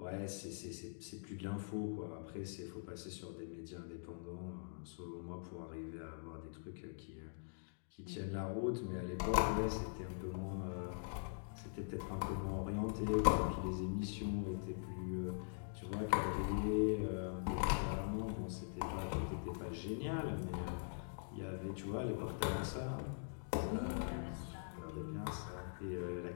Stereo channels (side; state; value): right; silent; digital silence